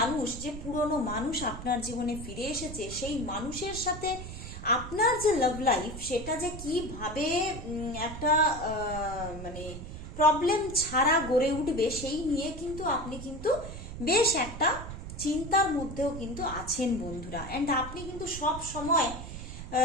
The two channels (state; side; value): noise; right; rumble, 10 dB below the sound